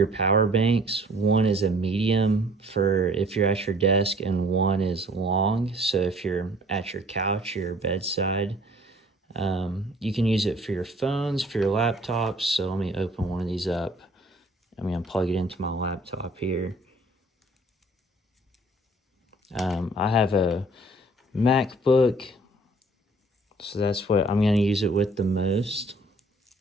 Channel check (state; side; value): normal; both; correlation 0.55